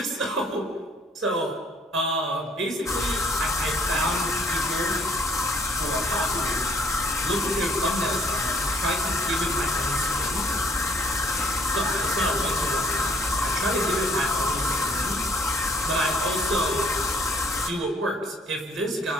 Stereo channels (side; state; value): both; normal; correlation 0.61